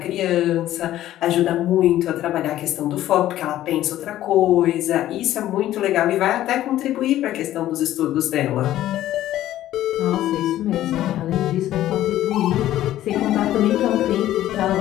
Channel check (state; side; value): quieter; right; 13.5 dB